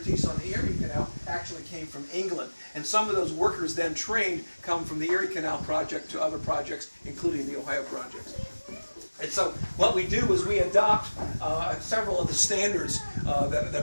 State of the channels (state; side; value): inverted; both; correlation -1.00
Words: on the Erie Canal actually came from England. And some of those workers then trained come from the Erie Canal project to other projects, including the Ohio projects. And so what we do is we adopt several of the standards that